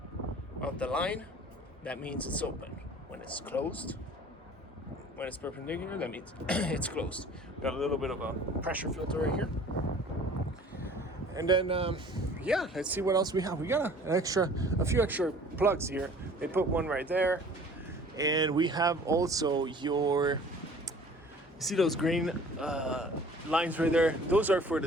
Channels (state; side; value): normal; both; correlation 0.49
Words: the line, that means it's open. When it's closed, when it's perpendicular, that means it's closed. Got a little bit of a pressure filter right here. And then, let's see what else we have. We got a few extra plugs here. They put one right there. And we have also you see those green lines right there? Those are for